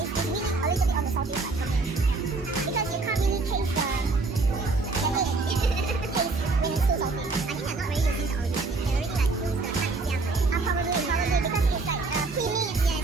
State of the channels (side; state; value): left; quieter; 3.7 dB